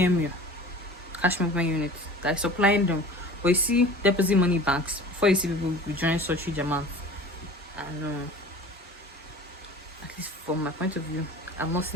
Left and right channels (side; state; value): both; normal; correlation 0.42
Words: cash movement unit, that is supplying them. But you see deposit money banks, before you see people withdrawing such huge amounts. I know. At least from my point of view, I've not